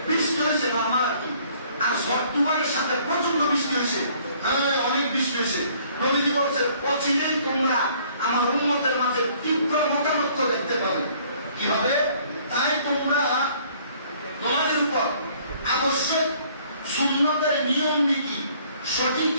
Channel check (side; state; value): both; inverted; correlation -0.59